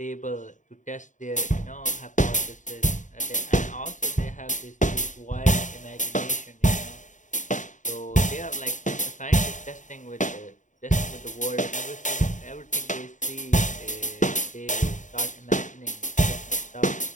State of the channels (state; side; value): late; right; 0.36 ms